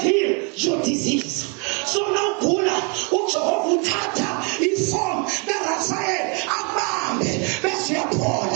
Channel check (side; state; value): left; quieter; 34.3 dB